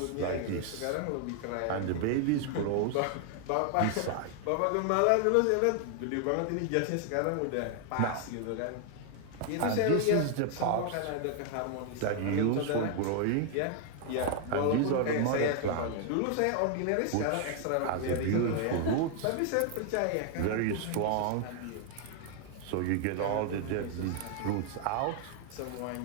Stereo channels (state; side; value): different; both; correlation 0.00